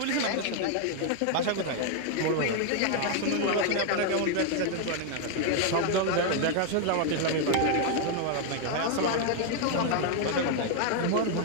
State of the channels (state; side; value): different; both; correlation 0.00